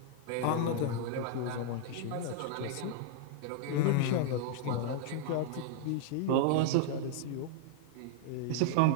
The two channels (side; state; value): both; different; correlation 0.00